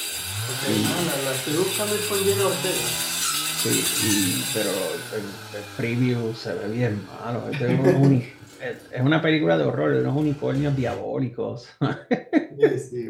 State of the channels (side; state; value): both; identical; correlation 1.00